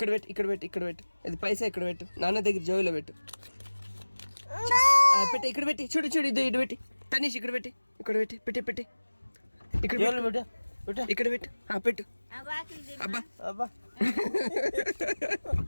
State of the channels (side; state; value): both; inverted; correlation -1.00